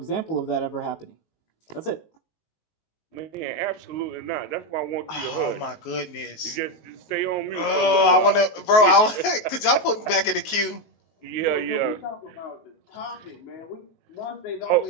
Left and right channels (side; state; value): right; late; 19 ms